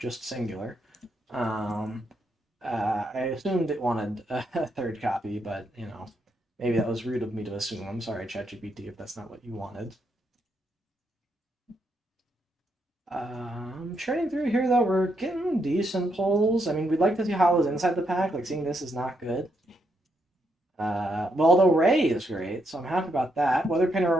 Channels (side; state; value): both; normal; correlation 0.78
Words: singular. I assumed it wanted a 3rd copy, but, you know, maybe that was rude of me to assume. I'm sorry, ChatGPT, if that's not what you wanted. Churning through here, though, we're getting decent pulls. I mean, we'd like to see Hollows inside the pack. Seeing this is not good. Well, although Ray is great, so I'm happy about that. Weather Painter